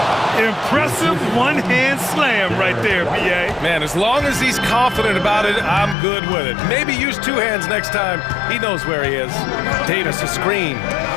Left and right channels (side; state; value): right; drops out; at 6.0 s